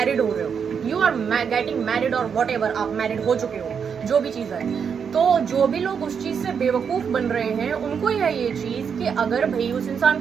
हो रहे हो, यू आर गेटिंग मैरिड और वॉट एवर, आप मैरिड हो चुके हो, जो भी चीज़ है, तो जो भी लोग उस चीज़ से बेवकूफ़ बन रहे हैं उनको है ये चीज़ कि अगर भाई उस इंसान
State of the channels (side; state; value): left; quieter; 6.8 dB